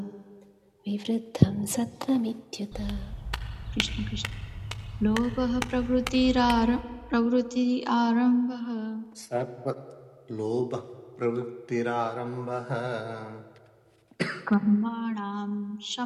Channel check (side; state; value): both; identical; correlation 1.00